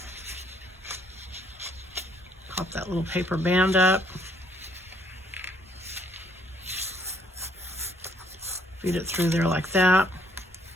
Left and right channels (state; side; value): normal; both; correlation 0.67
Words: Pop that little paper band up. Feed it through there like that.